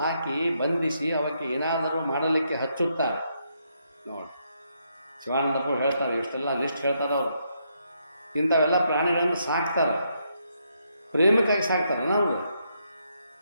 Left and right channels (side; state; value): both; inverted; correlation -0.77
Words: ಬಂಧಿಸಿ ಅವಕ್ಕೆ ಏನಾದರೂ ಮಾಡಲಿಕ್ಕೆ ಹಚ್ಚುತ್ತಾರೆ. ನೋಡಿ, ಶಿವಾನಂದಪ್ಪರು ಹೇಳ್ತಾರೆ, ಇಷ್ಟೆಲ್ಲ ಲಿಸ್ಟ್ ಹೇಳ್ತಾರೆ ಅವರು. ಇಂಥವೆಲ್ಲ ಪ್ರಾಣಿಗಳನ್ನು ಸಾಕ್ತಾರೆ, ಪ್ರೇಮಕ್ಕಾಗಿ ಸಾಕ್ತಾರೆ. ನಾವು